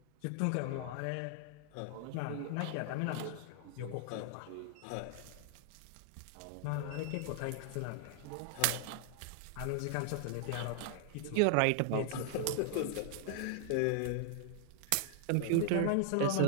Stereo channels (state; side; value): different; both; correlation 0.00